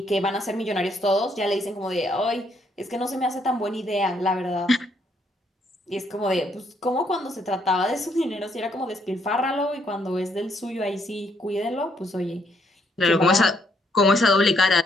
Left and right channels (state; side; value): normal; both; correlation 0.71